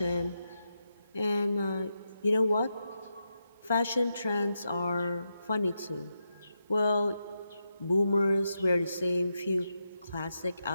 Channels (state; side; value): inverted; both; correlation -0.86